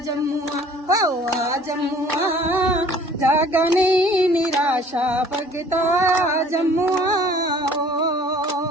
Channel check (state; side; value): normal; both; correlation 0.53